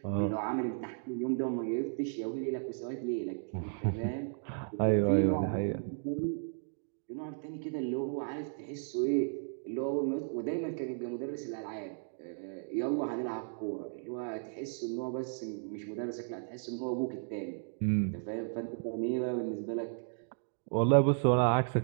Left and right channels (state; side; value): silent; left; digital silence